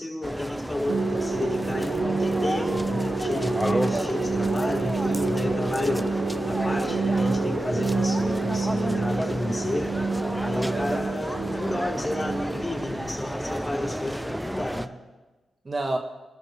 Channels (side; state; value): both; normal; correlation 0.92